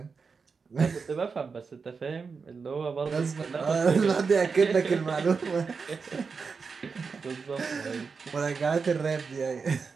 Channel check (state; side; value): quieter; left; 5.1 dB